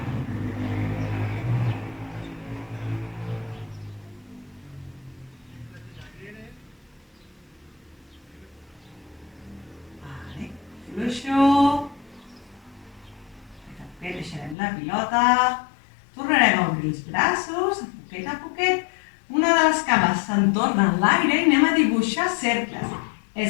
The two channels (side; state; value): right; drops out; at 14.6 s